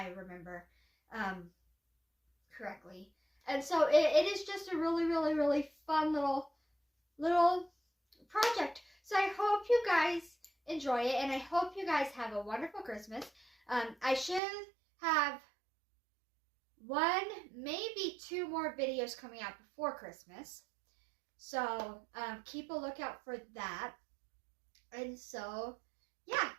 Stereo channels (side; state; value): left; drops out; at 14.4 s